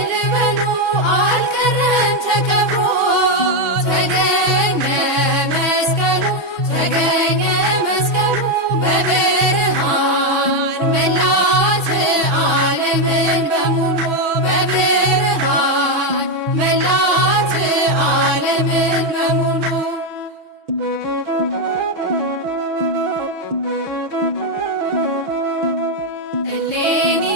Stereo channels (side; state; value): left; late; 6.1 ms